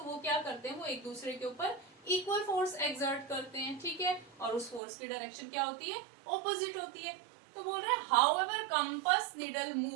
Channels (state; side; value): drops out; left; at 4.8 s